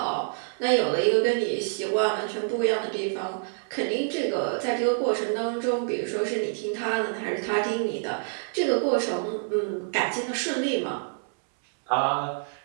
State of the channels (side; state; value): left; silent; 60 dB below the other